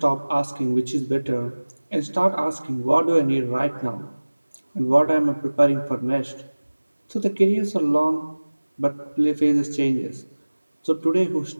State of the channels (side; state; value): both; inverted; correlation -1.00